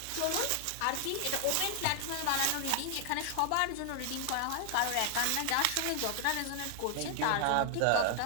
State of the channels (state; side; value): different; both; correlation 0.00